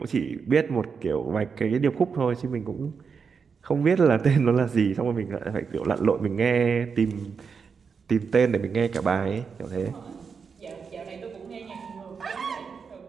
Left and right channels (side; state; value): left; quieter; 5.8 dB